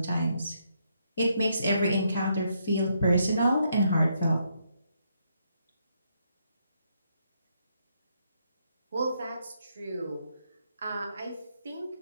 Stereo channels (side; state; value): both; inverted; correlation -0.76